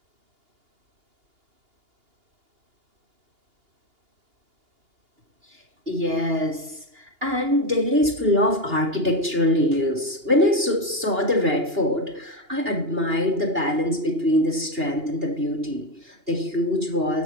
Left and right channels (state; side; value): late; left; 2.8 ms